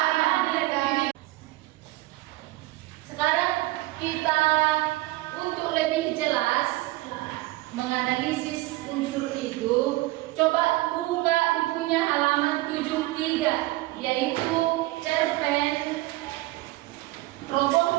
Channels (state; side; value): quieter; left; 19.1 dB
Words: sekarang kita untuk lebih jelas menganalisis unsur itu, coba buka bukunya halaman 73, yaitu cerpen